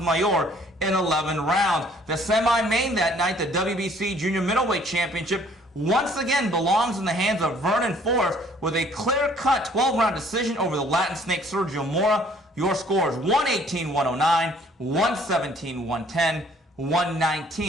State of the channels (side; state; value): both; normal; correlation 0.59